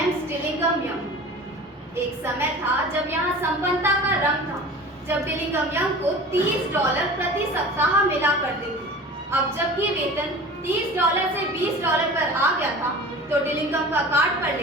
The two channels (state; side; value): normal; both; correlation 0.38